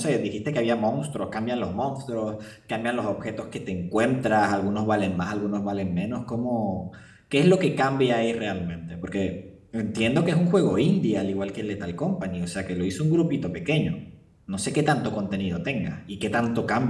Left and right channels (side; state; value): both; identical; correlation 1.00